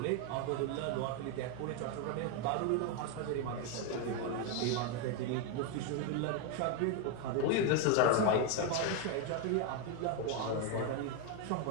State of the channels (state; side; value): different; both; correlation 0.02